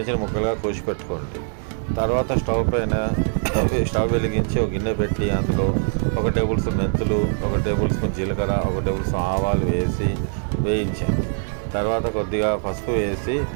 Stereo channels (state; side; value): silent; left; 60 dB below the other